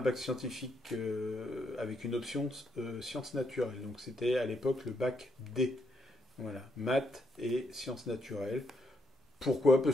scientifique avec une option sciences naturelles. Donc, c'était à l'époque le bac D. Voilà, maths et sciences naturelles. Pourquoi?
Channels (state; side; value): normal; both; correlation 0.77